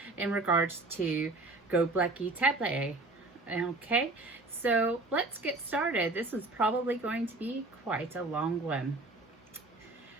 in regards to Göbekli Tepe. Okay, so let's get started. This is probably going to be quite a long one.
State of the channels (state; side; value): quieter; left; 3.0 dB